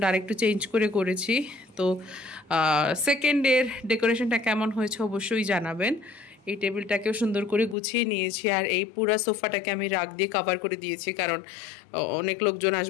আরেকটু চেঞ্জ করে করেছি। তো সেকেন্ড ডের ডেকোরেশনটা কেমন হয়েছে অবশ্যই জানাবেন। এই টেবিলটাকেও সুন্দর করে গুছিয়ে নিয়েছি, আর এই পুরা সোফাটাকে আমি রাগ দিয়ে কভার করে দিয়েছি, কারণ অনেক লোকজন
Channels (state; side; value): drops out; right; at 7.8 s